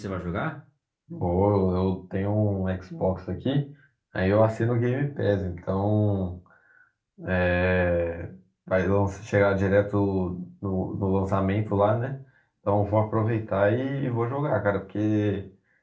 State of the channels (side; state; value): both; identical; correlation 1.00